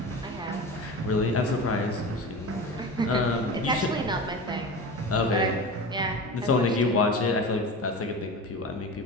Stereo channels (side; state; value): both; normal; correlation 0.30